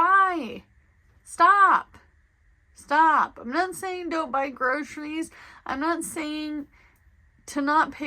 Stop. I'm not saying don't buy groceries. I'm not saying to not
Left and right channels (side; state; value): both; identical; correlation 1.00